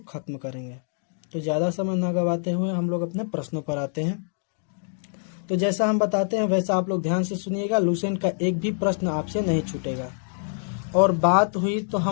खत्म करेंगे। तो ज़्यादा समय ना गवाते हुए हम लोग अपने प्रश्नों पर आते हैं। तो जैसा हम बताते हैं वैसा आप लोग ध्यान से सुनिएगा। लूसेंट का एक भी प्रश्न आपसे नहीं छूटेगा। और बात हुई तो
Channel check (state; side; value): silent; right; digital silence